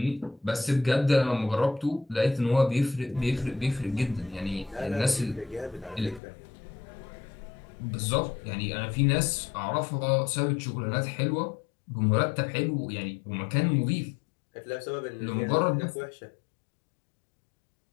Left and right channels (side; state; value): right; drops out; at 6.2 s